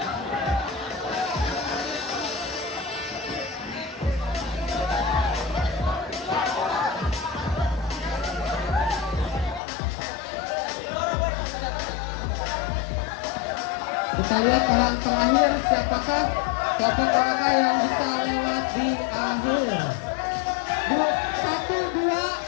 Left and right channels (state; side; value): drops out; right; at 9.6 s